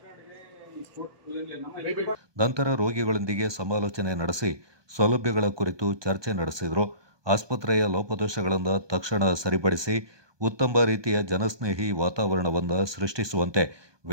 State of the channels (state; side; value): late; left; 1.2 ms